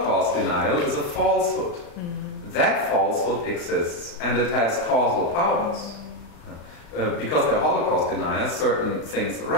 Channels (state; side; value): late; right; 35 ms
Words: denial is a falsehood. That falsehood exists, and it has causal powers. Because they're Holocaust deniers, certain things